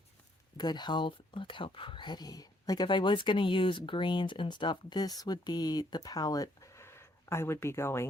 good health. Look how pretty. Like if I was going to use greens and stuff, this would be the palette I would be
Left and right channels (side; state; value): both; normal; correlation 0.69